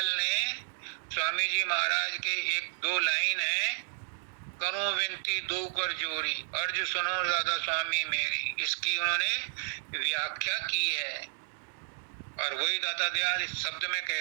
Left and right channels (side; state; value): left; silent; 57 dB below the other